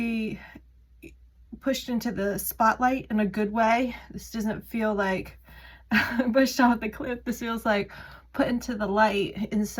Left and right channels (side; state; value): both; identical; correlation 1.00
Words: pushed into the spotlight in a good way. This doesn't feel like pushed off the cliff. This feels like put into the light in